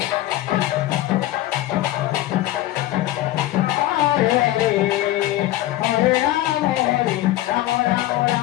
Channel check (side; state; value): right; quieter; 15.5 dB